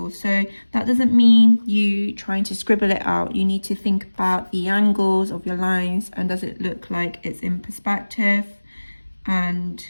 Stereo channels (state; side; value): inverted; both; correlation -1.00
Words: So that doesn't mean you trying to scribble it out. You need to think about the angles of your lines and does it look like it's in perspective and